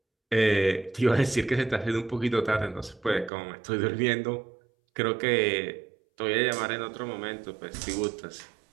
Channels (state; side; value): drops out; left; at 3.3 s